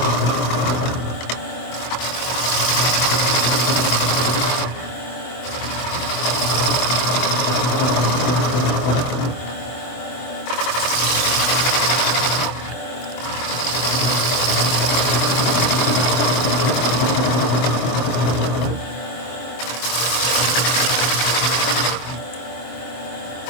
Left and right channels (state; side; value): late; right; 24 ms